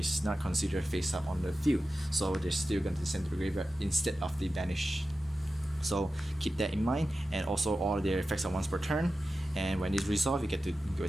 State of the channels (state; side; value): normal; both; correlation 0.93